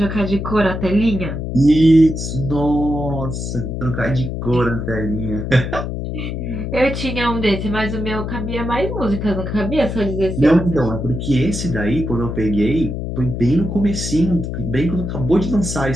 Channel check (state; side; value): noise; left; hum, 4 dB below the sound